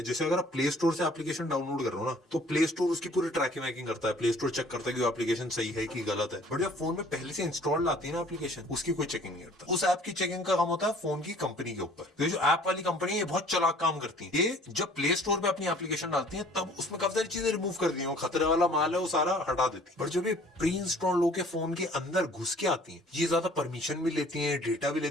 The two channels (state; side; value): normal; both; correlation 0.53